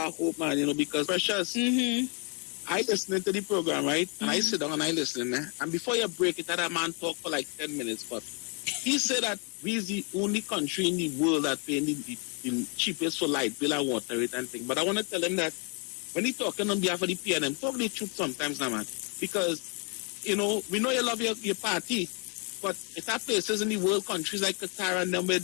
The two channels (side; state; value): right; quieter; 36.7 dB